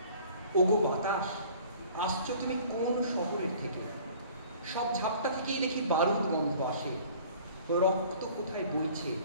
ওগো বাতাস, আসছো তুমি কোন শহরের থেকে? সব ঝাপটা থেকেই দেখি বারুদ গন্ধ আসে, রক্ত কোথায় বইছে।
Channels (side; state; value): both; inverted; correlation -0.50